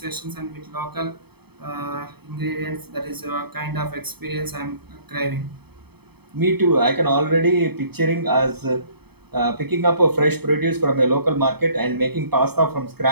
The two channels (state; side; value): late; left; 0.97 ms